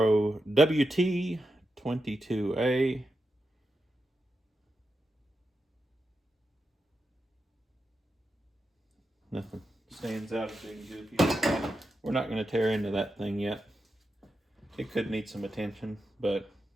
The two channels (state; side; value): normal; both; correlation 0.88